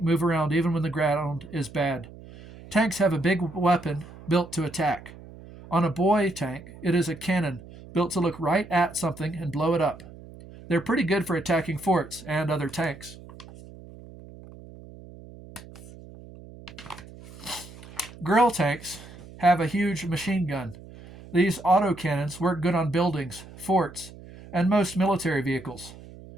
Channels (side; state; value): right; noise; hum, 18 dB below the sound